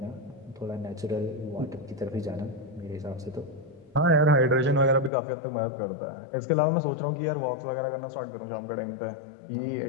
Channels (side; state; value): right; drops out; at 5.1 s